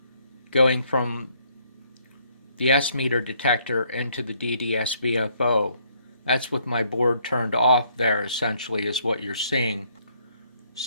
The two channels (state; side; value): inverted; both; correlation -0.68